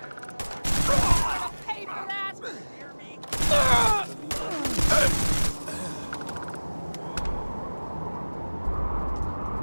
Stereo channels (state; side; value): inverted; both; correlation -1.00